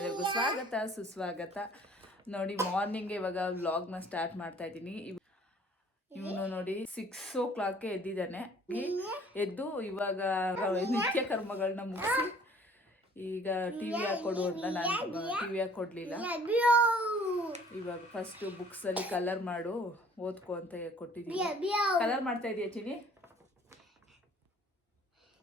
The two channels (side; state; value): both; normal; correlation 0.54